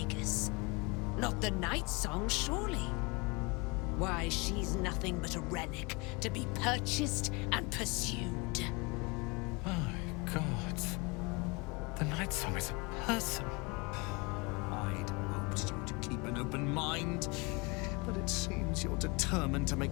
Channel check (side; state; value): right; quieter; 28.0 dB